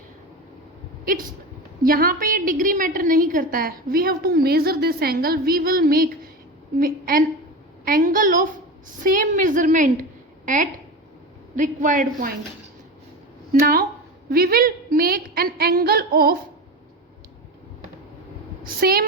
It's यहाँ पे ये डिग्री मैटर नहीं करता है. We have to measure this angle. We will make an angle of same measurement at required point. Now we will make an angle of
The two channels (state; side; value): normal; both; correlation 0.25